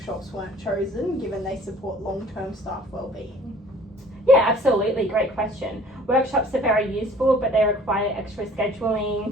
weren't chosen, given they support long-term staff wellbeing? Yeah, absolutely, great question. Workshops are very useful, but they require extra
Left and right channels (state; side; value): normal; both; correlation 0.52